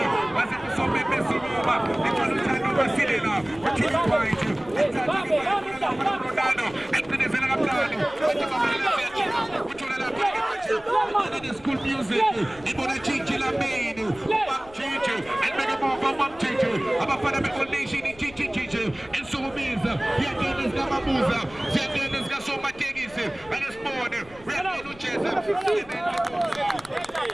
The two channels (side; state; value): left; noise; rumble, 22 dB below the sound